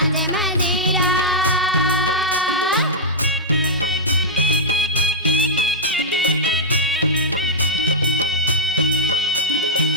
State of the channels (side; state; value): both; normal; correlation -0.10